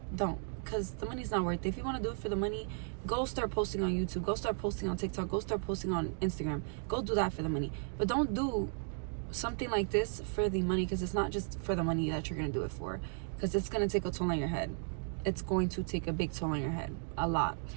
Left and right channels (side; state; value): left; silent; 54 dB below the other